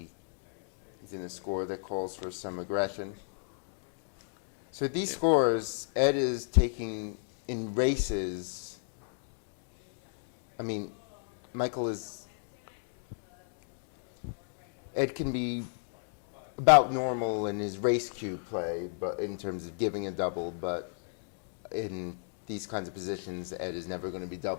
in a score that calls for some aggression. So these scores, Ed is taking in races. I mean, Michael is. Ed can be about normal in his race cue play, but in terms of giving a double, but in these kinds of positions, Ed is never going to be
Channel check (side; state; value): right; silent; digital silence